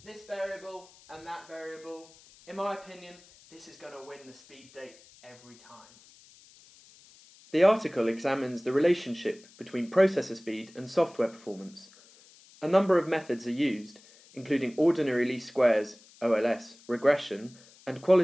this variable and that variable, in my opinion, this is going to win the speed date every time. The article examines the relationship between processor speed and software performance. A number of methods are used, including ordinary least squares, OLS, regression, and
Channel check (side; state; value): left; noise; hiss, 25 dB below the sound